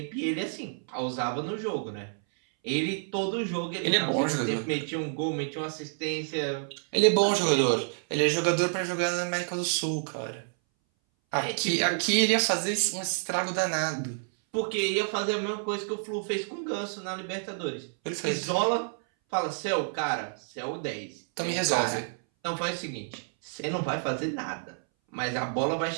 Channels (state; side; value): silent; left; 59 dB below the other